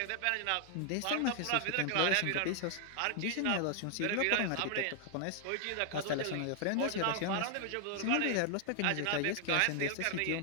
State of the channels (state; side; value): different; both; correlation 0.00